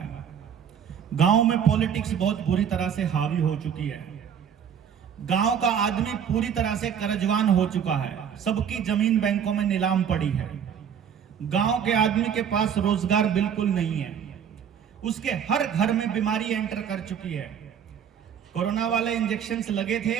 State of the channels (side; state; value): left; quieter; 8.1 dB